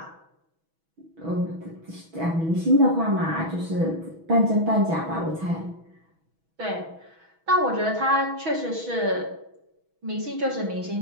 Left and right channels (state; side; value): late; left; 6.1 ms